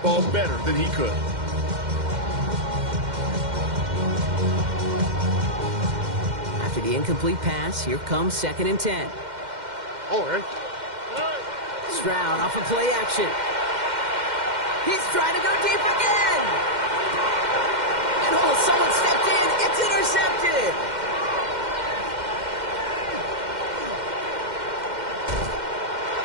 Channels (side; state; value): left; late; 2.1 ms